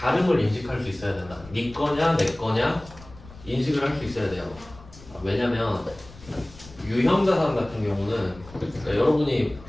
인식할 수 있어야 된다. 네 거냐 내 거냐 인식을 할 수 있어야 돼요. 왜냐면 유형자산 같은 경우는 그러니까 여러분이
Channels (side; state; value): left; noise; rumble, 20 dB below the sound